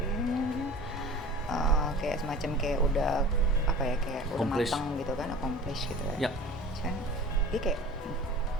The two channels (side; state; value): both; normal; correlation 0.41